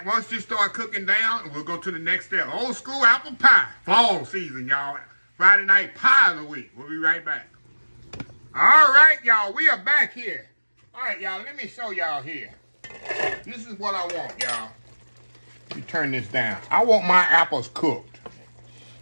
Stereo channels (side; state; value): both; inverted; correlation -1.00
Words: once this start cooking down, and we'll go to the next step. Old school apple pie, fall season, y'all. Friday night pie of the week. We'll be right back. All right, y'all, we are back here. All right, y'all, let me show y'all here. This is what I want, y'all. Let me turn this down. I want my apples cooked.